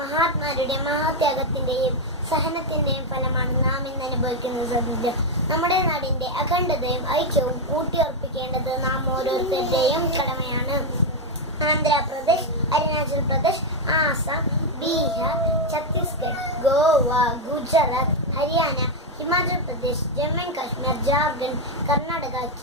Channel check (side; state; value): both; normal; correlation 0.03